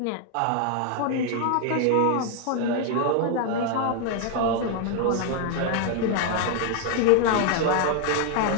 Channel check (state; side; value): different; both; correlation 0.00